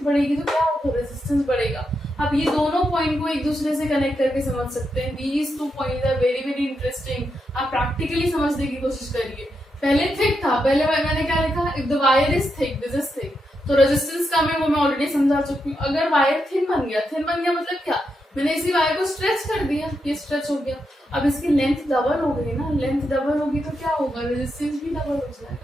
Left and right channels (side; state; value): both; normal; correlation 0.84